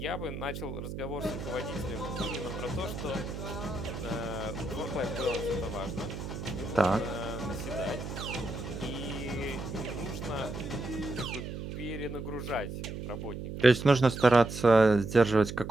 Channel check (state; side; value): noise; right; hum, 7 dB below the sound